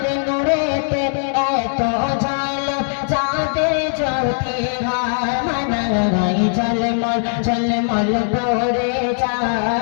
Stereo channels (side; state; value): right; silent; 66 dB below the other